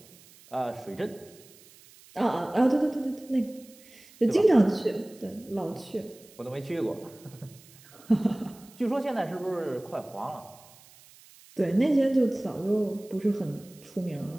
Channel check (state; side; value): noise; right; hiss, 24 dB below the sound